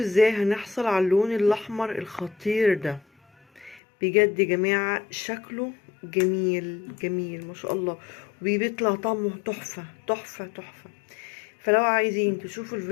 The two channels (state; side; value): drops out; right; at 3.8 s